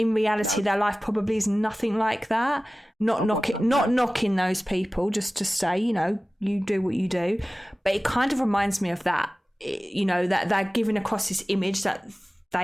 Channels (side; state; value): both; normal; correlation 0.97